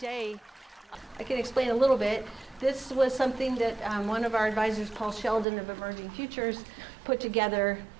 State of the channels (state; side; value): drops out; left; at 5.5 s